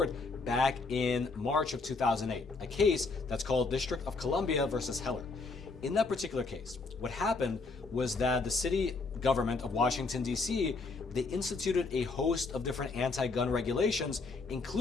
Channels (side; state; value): right; quieter; 3.9 dB